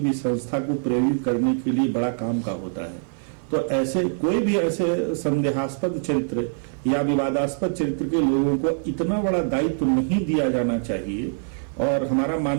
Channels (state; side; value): silent; left; 62 dB below the other